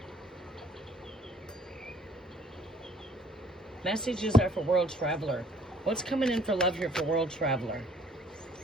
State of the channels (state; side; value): normal; both; correlation 0.59